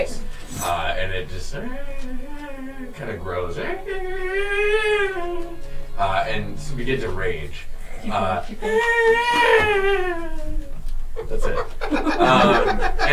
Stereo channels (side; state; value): both; identical; correlation 1.00